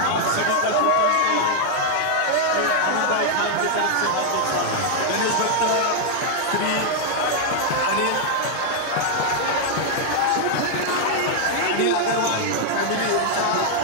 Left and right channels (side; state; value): both; different; correlation 0.00